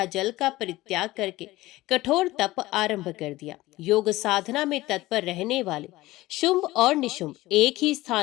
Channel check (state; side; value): quieter; right; 18.1 dB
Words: जल का परित्याग करके कठोर तप आरंभ कर दिया। योग साधना में तत्पर रहने वाले शुंभ और निशुंभ एक ही